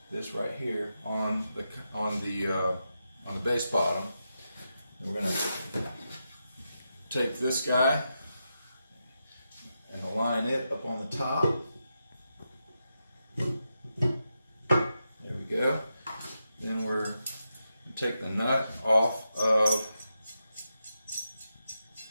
this right here, on the bass bottom. And we're going to take this guy and align it up on the top. There we go. Then we're going to take the nut off of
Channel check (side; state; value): both; inverted; correlation -0.87